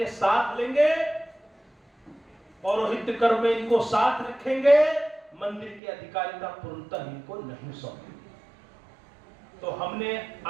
साथ लेंगे, पौरोहित्य कर्म में इनको साथ रखेंगे, मंदिर की अधिकारिता पूर्णतः इनको नहीं सौंपेंगे। तो हमने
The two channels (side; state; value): left; drops out; at 5.8 s